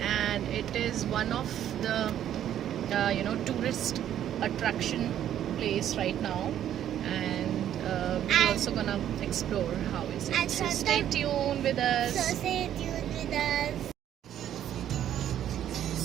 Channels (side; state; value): left; quieter; 10.9 dB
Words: it is one of the tourist attraction place right now, and we're also gonna explore how is it. And So stay tuned with us. So stay tuned with us.